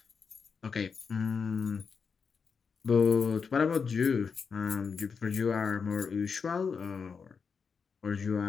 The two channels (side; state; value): right; quieter; 5.7 dB